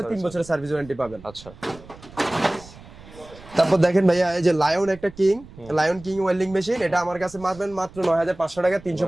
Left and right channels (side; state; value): right; noise; rumble, 20 dB below the sound